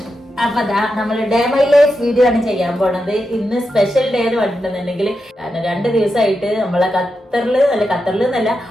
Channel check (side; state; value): both; normal; correlation 0.88